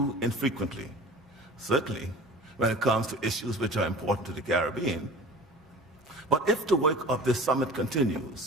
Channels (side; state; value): both; normal; correlation 0.40